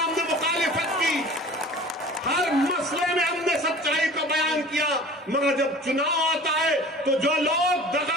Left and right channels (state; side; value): normal; both; correlation 0.43